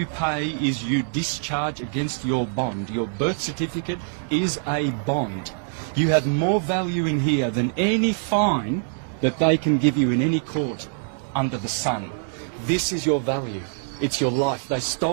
pay is you discharge against your bond. Your birth certificate is a bond. You have more value in here than any fine that they can give you in any court under the sun. This is your value. It's your life. They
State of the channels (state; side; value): silent; left; 62 dB below the other